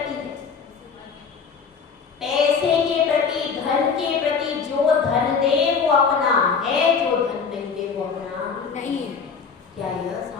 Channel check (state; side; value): quieter; right; 5.8 dB